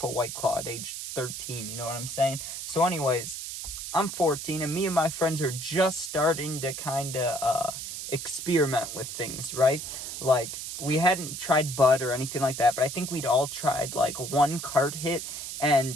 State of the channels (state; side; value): noise; right; hiss, 7 dB below the sound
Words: a White Claw at age 13, you know what I'm saying? So anyways, I'm 14 and me and my friends are just starting to kind of experiment with things, right? Like, we hadn't tried bud or anything like that, but I think we'd all tried like one cart hit,